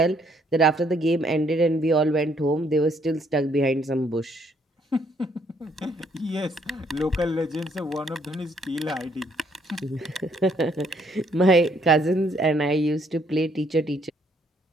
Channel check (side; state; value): both; normal; correlation 0.68